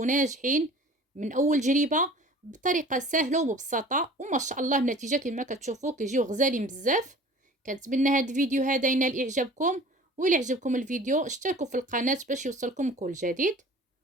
من اول جربه بطريقه سهله ومبسطه، وما شاء الله النتيجه كما كتشوفوا كيجيو غزالين بزاف. كنتمنى هذا الفيديو هذا ينال اعجابكم، والى عجبكم الفيديو اشتركوا في القناه باش يوصلكم كل جديد.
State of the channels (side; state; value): both; normal; correlation 0.45